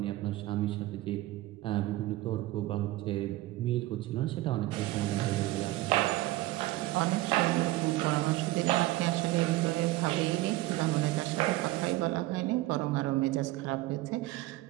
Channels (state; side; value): quieter; left; 17.9 dB